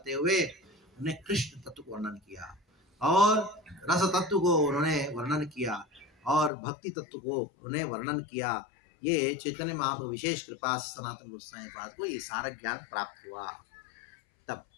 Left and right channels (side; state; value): right; drops out; at 6.5 s